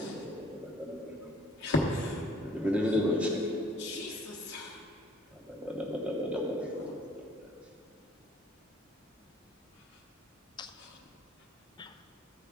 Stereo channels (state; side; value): normal; both; correlation 0.58